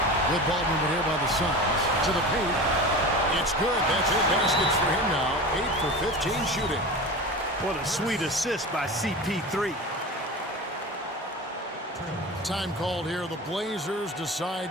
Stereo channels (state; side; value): normal; both; correlation 0.31